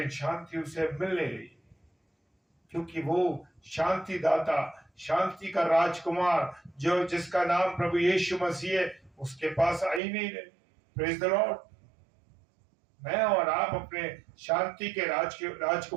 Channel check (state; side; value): drops out; left; at 10.0 s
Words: शांति उसे मिल नहीं रही, क्योंकि वो शांति दाता, शांति का राजकुमार जो जिसका नाम प्रभु यीशु मसीह है, उसके पास आ ही नहीं रहे। Praise the Lord. मैं और आप अपने शांति के